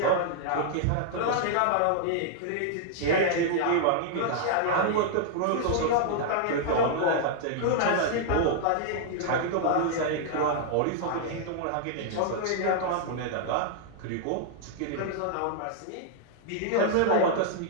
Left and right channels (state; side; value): different; both; correlation -0.01